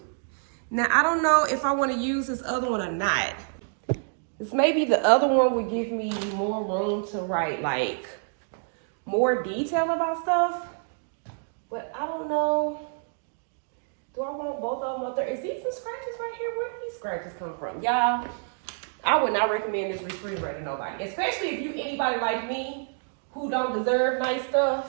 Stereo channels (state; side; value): silent; left; digital silence